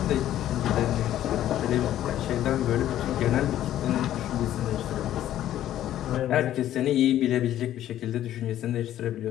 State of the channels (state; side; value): quieter; right; 12.3 dB